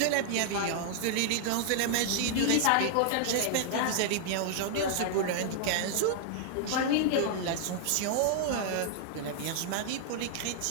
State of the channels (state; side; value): different; both; correlation -0.01